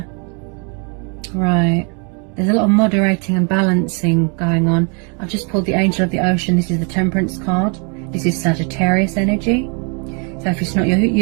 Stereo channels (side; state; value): left; quieter; 35.7 dB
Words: Right. There's a lot of moderating and balancing going on. I've just pulled the Angel of the Ocean. This is the Temperance card. This is Sagittarius energy. So if it's not